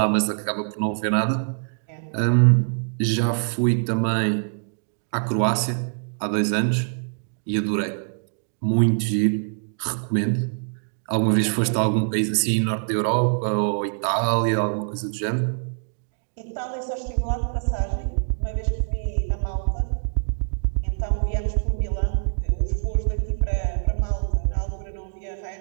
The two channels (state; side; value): silent; left; digital silence